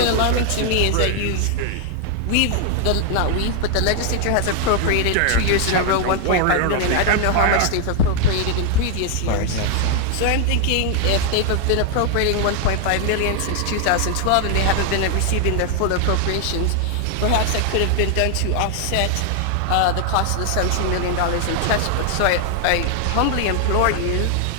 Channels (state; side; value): different; both; correlation 0.00